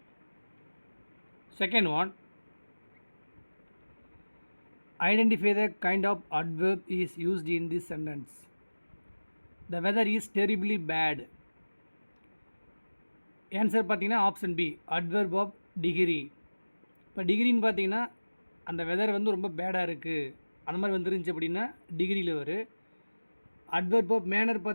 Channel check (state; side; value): inverted; both; correlation -1.00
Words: Second one, identify the kind of adverb is used in this sentence. The weather is terribly bad. Answer பார்த்தீங்கன்னா option B, adverb of degree. இப்போ டிகிரின்னு பார்த்தீங்கன்னா அந்த weather வந்து ரொம்ப பேடாக இருக்குது அந்த மாதிரி வந்துருந்துச்சு அப்படின்னா டிகிரியில் வரும். அட்வர்ப் ஆஃப் மேனர்